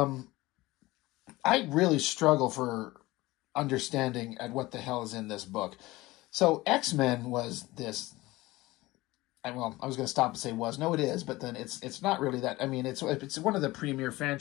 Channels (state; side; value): quieter; right; 19.5 dB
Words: I really struggle for understanding at what the hell is in this book. So X-Men was this. Well, I was going to stop and say was. No, it is, but then it's not really that. I mean, it's one of the premier